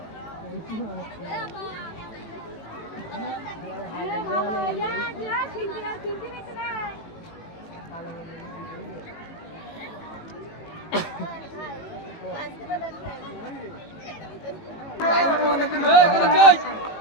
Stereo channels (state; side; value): late; right; 18 ms